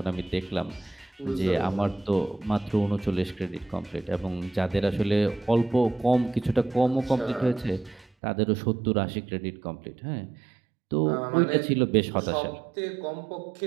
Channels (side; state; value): left; drops out; at 8.1 s